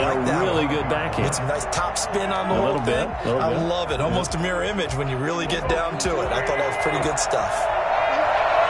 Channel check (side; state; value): both; identical; correlation 1.00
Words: like that. Really good backhand. Get some nice top spin on the whole thing. I love it. Almost a mirror image when you really get down to it. I thought that was pretty good stuff.